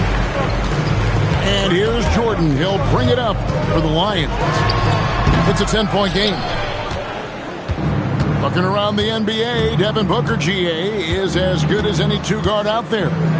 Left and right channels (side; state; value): both; identical; correlation 1.00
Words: And here's Jordan. He'll bring it up for the Lions. It's a 10-point game. Looking around the NBA, Devin Booker, GA, is as good as any 2-guard out there.